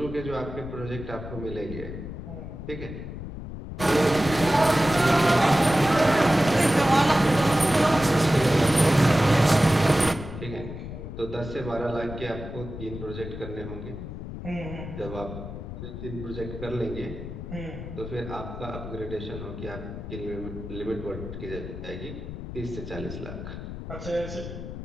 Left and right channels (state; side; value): noise; left; rumble, 9 dB below the sound